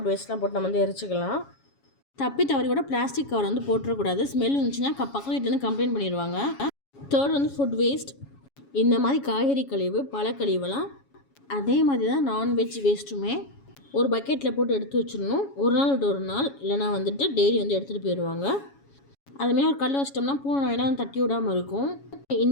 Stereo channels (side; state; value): right; late; 7.2 ms